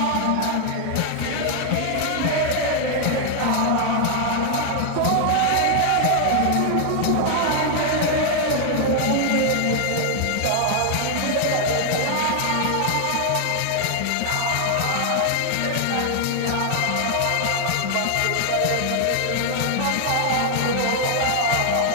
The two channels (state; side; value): different; both; correlation 0.00